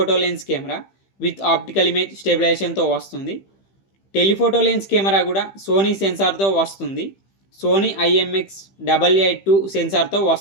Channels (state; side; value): late; right; 15 ms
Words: lens camera with optical image స్టెబిలైజేషన్తో వస్తుంది. టెలిఫోటో లెన్స్ కెమెరా కూడా సోనీ సెన్సార్తో వస్తుంది. సోనీ IMX882 సెన్సార్తో